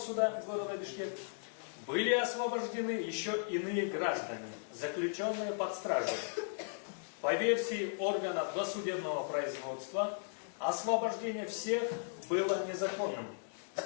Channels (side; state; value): right; silent; digital silence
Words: города Бишкек, были освобождены еще иные граждане, заключенные под стражей. По версии органа досудебного производства, освобождение всех было незаконным.